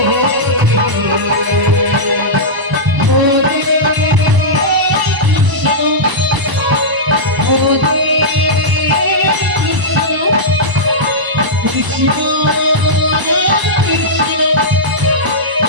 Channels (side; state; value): left; late; 1.0 ms